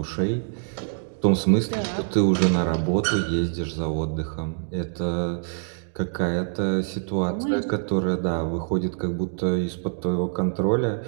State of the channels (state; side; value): silent; left; digital silence